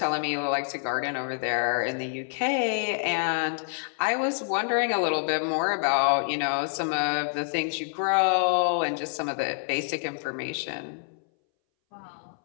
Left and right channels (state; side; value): silent; right; 60 dB below the other